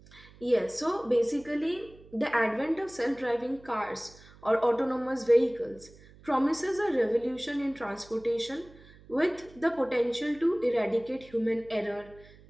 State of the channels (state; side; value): noise; right; hum, 23 dB below the sound